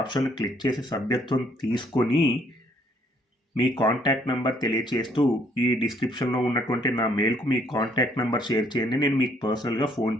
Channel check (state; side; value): normal; both; correlation 0.66